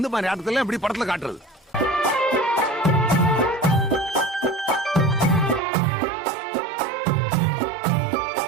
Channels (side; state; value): left; drops out; at 5.6 s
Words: மாதிரி ஆட்டத்துல எப்படி படத்துல காட்டுறது?